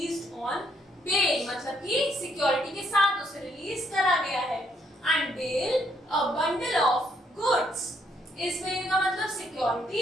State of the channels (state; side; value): normal; both; correlation 0.71